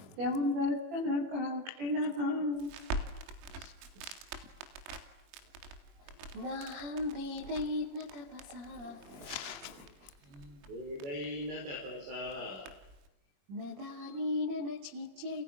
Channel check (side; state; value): left; late; 21 ms